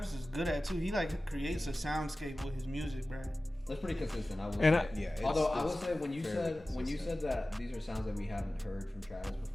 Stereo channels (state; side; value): normal; both; correlation 0.96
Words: is good at too. He like creates a soundscape with his music, bro. That's pretty consistent. I will And say. Yeah, Although I it's will say when you fairly said that these are sounds that we haven't heard from Travis